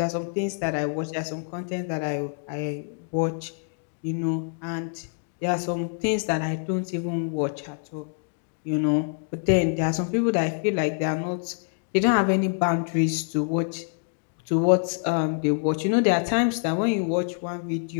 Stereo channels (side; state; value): right; silent; digital silence